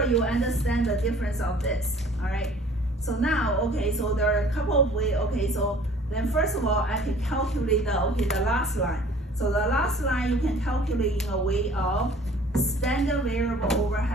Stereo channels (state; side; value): normal; both; correlation 0.52